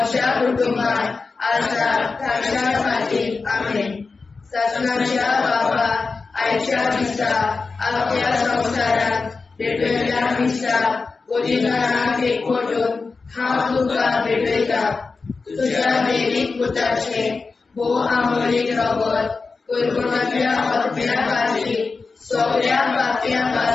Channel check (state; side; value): quieter; right; 4.3 dB